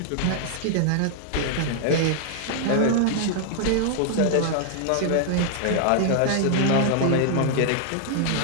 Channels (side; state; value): both; different; correlation -0.01